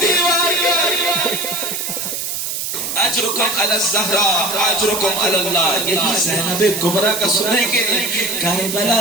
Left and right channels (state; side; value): noise; right; hiss, 4 dB below the sound